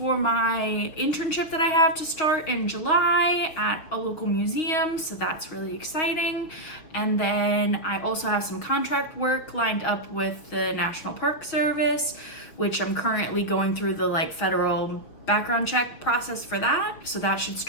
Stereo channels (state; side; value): late; right; 6.5 ms